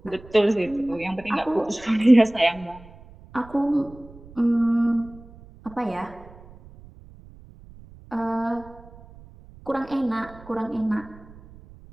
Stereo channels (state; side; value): noise; right; rumble, 21 dB below the sound